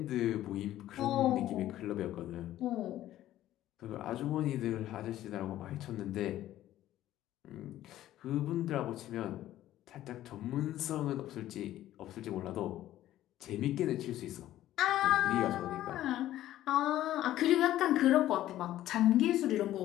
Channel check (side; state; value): right; quieter; 13.6 dB